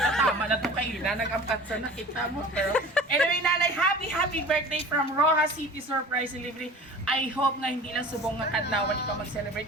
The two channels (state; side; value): normal; both; correlation 0.41